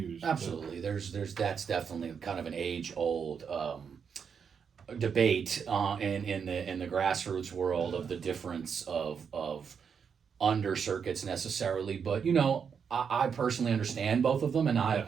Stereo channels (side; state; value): left; quieter; 6.7 dB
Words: Absolutely. There's that's definitely kind of an age-old debate in the grassroots world of the difference of under circuits necessarily. But I personally understand both of them, and I